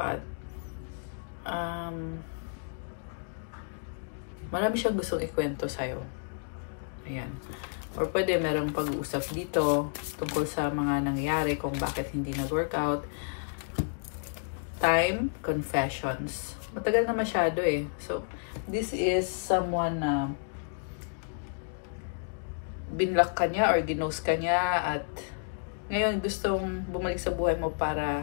marami siyang gustong ikwento sa'yo. Ayan. Or pwede merong pag-uusap dito tungkol sa mga nangyari kung bakit hindi nag-workout. Time, confessions. Matagal na masyado eh. So, this is someone na binlock ka niya or ginost ka niya at ngayon gustong bumalik sa buhay mo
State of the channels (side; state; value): right; silent; digital silence